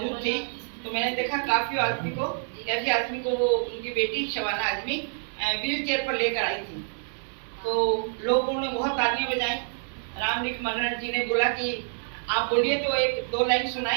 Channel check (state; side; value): silent; left; 60 dB below the other